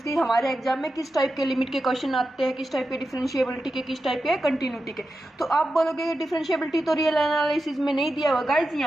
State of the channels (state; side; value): normal; both; correlation 0.90